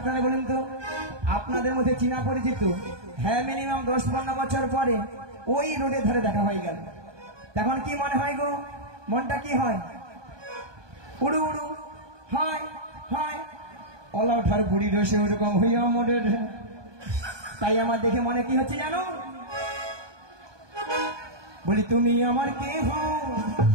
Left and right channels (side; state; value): left; late; 1.2 ms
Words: বলুন তো, আপনাদের মধ্যে চিনা পরিচিত হ্যাঁ মিনিমাম 10-15 বছর পরে ওই রোডের ধারে দেখা হয়ে গেল, তখন কি মনে হয় গো? মনটা কি হয়? উড়ু উড়ু হয় হয়। অলা ওঠার বুড়ি রসে ওরকম হইয়া মোড়ের। তাই আমার দেখে মনে কি হচ্ছে জানো? বলি তুমি আমার কে হও?